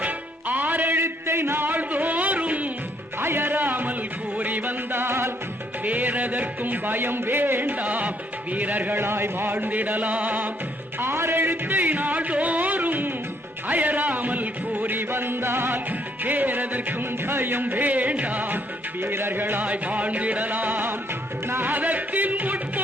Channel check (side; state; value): both; normal; correlation 0.69